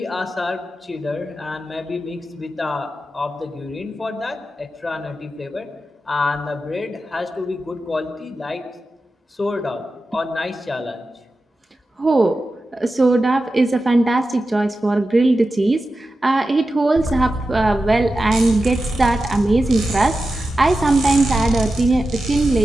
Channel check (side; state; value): both; normal; correlation 0.92